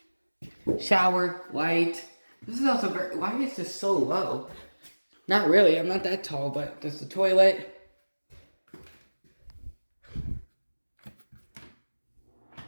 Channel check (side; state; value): both; inverted; correlation -1.00